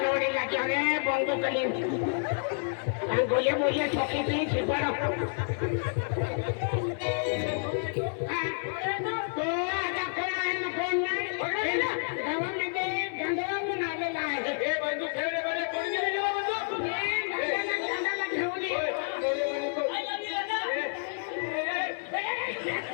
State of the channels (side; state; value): right; silent; 58 dB below the other